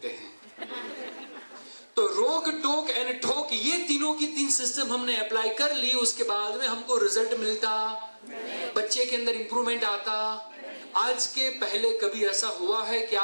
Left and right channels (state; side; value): inverted; both; correlation -1.00